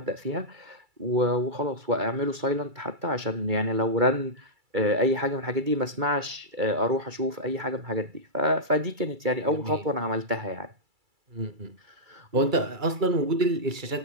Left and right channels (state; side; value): late; left; 2.3 ms